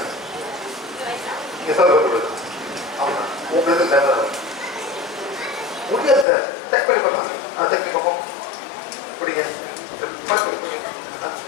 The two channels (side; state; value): right; drops out; at 6.2 s